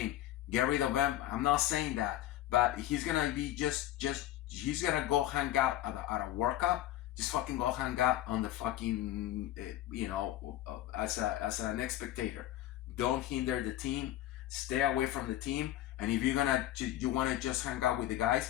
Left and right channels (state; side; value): quieter; right; 13.9 dB